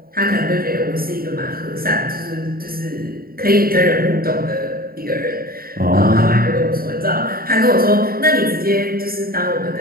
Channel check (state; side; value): late; left; 0.43 ms